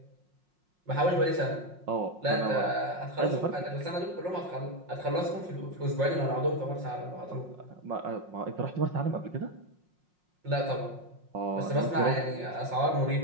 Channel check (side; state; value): left; late; 5.6 ms